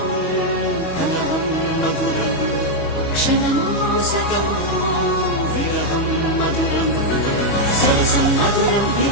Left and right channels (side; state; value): right; late; 25 ms